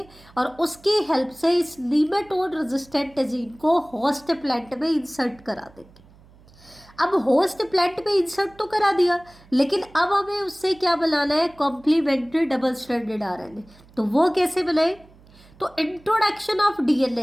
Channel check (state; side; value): noise; right; hum, 26 dB below the sound